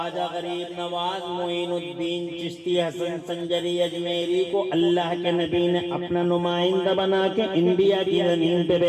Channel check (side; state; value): both; identical; correlation 1.00